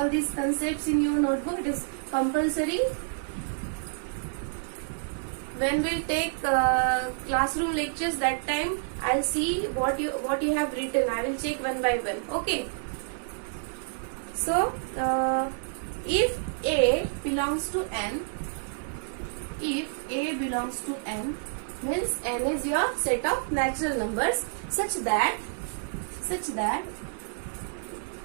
these concepts in your notebook. It is compulsory. When we'll take classroom lectures, that time I'll see what you have written. I will check one by one. Okay. So if A belongs to N, if A belongs to N, means N is your set of natural numbers such that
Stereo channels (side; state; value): left; silent; digital silence